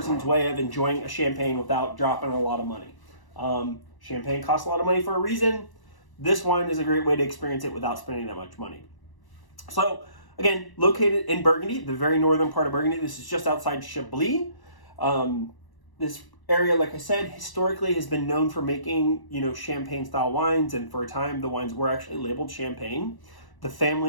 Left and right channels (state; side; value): late; right; 1.0 ms